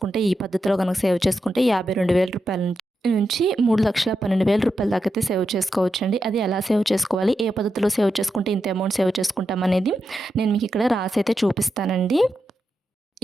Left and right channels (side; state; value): both; normal; correlation 0.87